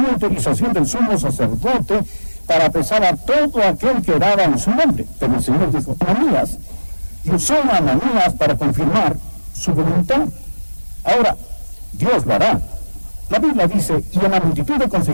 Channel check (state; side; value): inverted; both; correlation -1.00